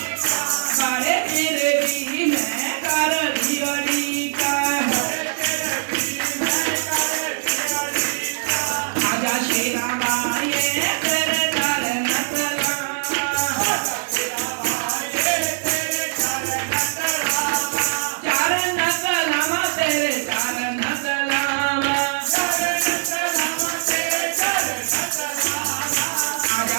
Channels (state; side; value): silent; left; 61 dB below the other